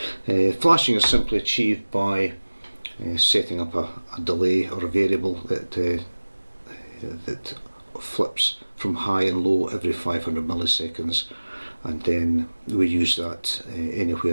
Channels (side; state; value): both; inverted; correlation -1.00